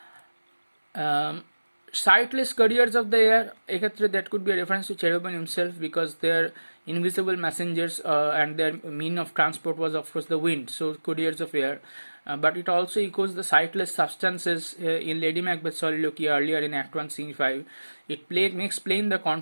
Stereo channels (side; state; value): both; inverted; correlation -1.00